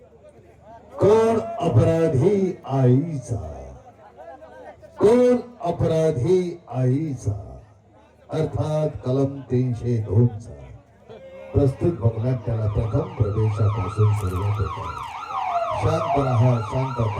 कोण अपराधी आईचा, कोण अपराधी आईचा, अर्थात कलम 302 चा प्रस्तुत भगनाट्याला प्रथम प्रवेशापासून सुरुवात होते. शांत रहा, शांत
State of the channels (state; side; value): identical; both; correlation 1.00